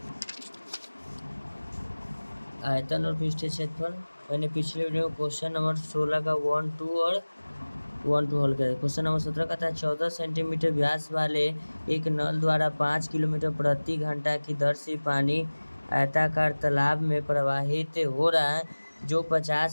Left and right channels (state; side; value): inverted; both; correlation -1.00